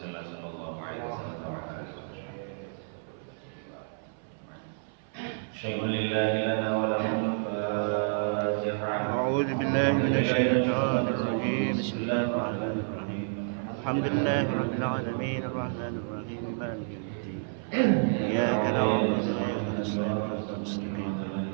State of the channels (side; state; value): left; silent; 58 dB below the other